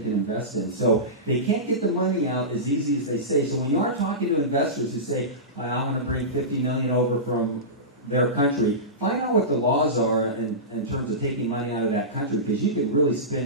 invest in. So they can't get the money out as easy as they say. So when you are talking to investors who say, I want to bring $50 million over from their country, find out what the laws are in terms of taking money out of that country, because you can really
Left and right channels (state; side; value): normal; both; correlation -0.19